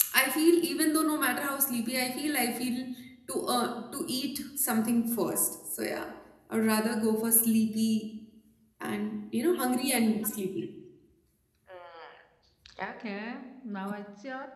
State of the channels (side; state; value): both; identical; correlation 1.00